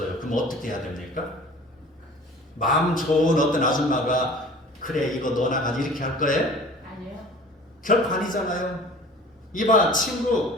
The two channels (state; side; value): normal; both; correlation 0.44